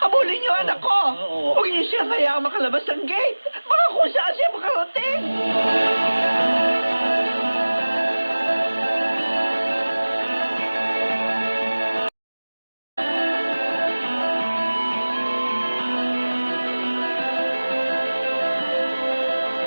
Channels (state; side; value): inverted; both; correlation -1.00